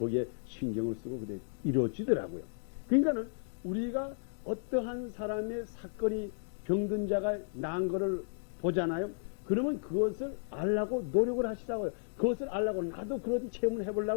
신경을 쓰고 그래 이루어지더라고요. 그러니까는 우리가 어떠한 사람의 사건이 병든 자가 나은 거를 보잖아요. 그러면 그것을 알라고 노력을 하시라고요. 그것을 알라고 나도 그런 체험을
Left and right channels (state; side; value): silent; right; digital silence